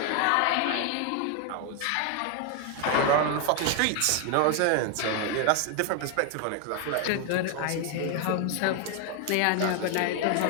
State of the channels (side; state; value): both; different; correlation 0.01